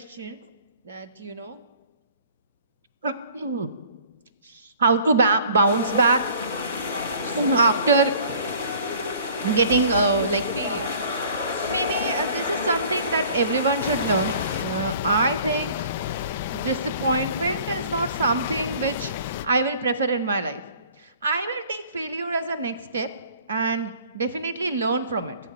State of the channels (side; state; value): both; inverted; correlation -0.51